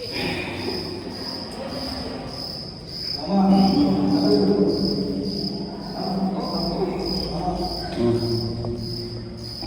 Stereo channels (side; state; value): both; identical; correlation 1.00